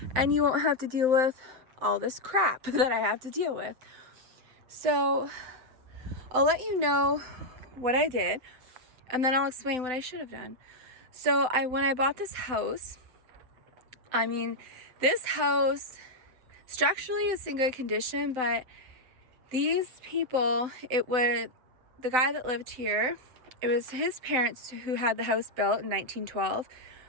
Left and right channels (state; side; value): late; left; 7.9 ms